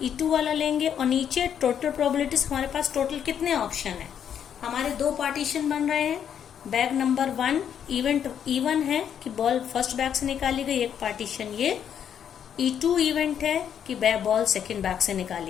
E2 वाला लेंगे और नीचे टोटल प्रोबेबिलिटीज, हमारे पास टोटल कितने ऑप्शन है, हमारे 2 पार्टीशन बन रहे हैं। बैग नंबर 1 इवेंट E1 है कि बॉल फर्स्ट बैग से निकाली गई, एक पार्टीशन ये E2 इवेंट है कि बॉल सेकेंड बैग से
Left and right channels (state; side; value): quieter; right; 8.7 dB